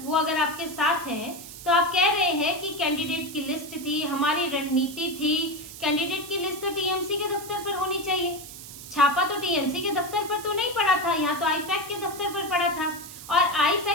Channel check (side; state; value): right; noise; hiss, 14 dB below the sound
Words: वो अगर आपके साथ हैं तो आप कह रहे हैं कि कैंडिडेट की लिस्ट थी, हमारी रणनीति थी, कैंडिडेट की लिस्ट तो टीएमसी के दफ्तर पर होनी चाहिए। छापा तो टीएमसी के दफ्तर पर तो नहीं पड़ा था, यहाँ तो आईपैक के दफ्तर पर पड़ा था। और